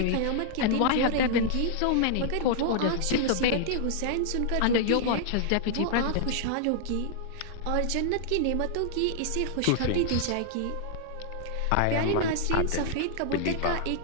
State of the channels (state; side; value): different; both; correlation -0.01